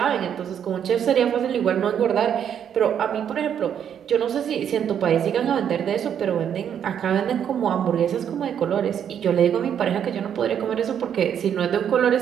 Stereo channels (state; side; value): quieter; left; 8.8 dB